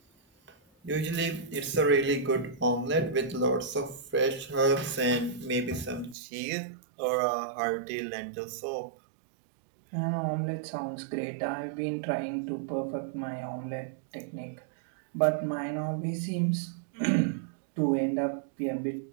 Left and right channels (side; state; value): left; drops out; at 6.2 s